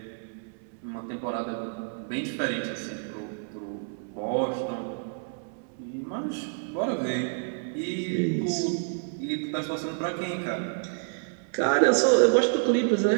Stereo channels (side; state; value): left; silent; 59 dB below the other